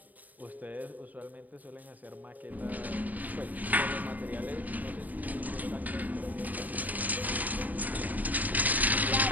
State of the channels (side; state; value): left; late; 0.080 ms